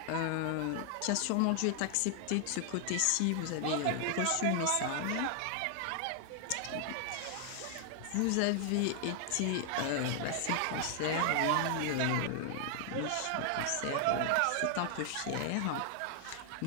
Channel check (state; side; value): different; both; correlation 0.00